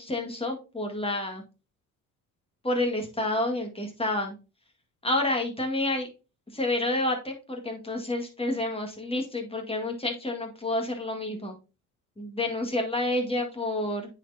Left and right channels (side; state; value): both; normal; correlation 0.23